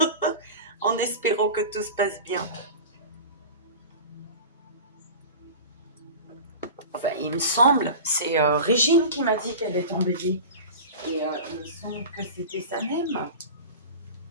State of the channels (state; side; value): inverted; both; correlation -0.32